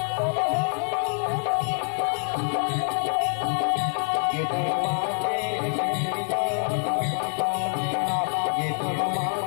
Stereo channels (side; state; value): right; silent; 61 dB below the other